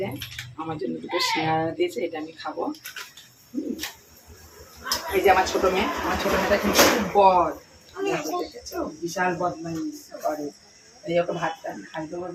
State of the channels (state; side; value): identical; both; correlation 1.00